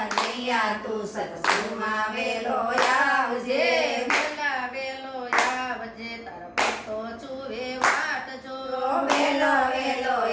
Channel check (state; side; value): identical; both; correlation 1.00